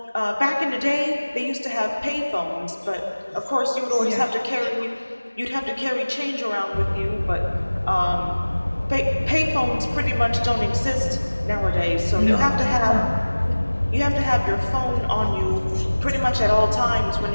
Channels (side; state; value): both; inverted; correlation -1.00